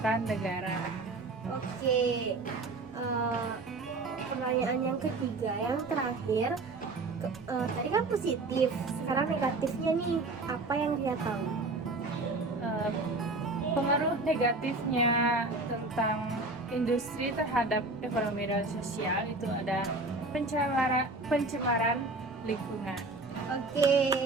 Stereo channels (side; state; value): left; quieter; 3.2 dB